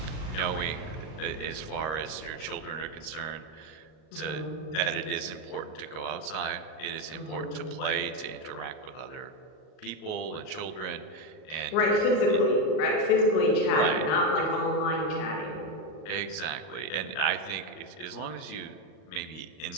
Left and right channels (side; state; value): right; late; 39 ms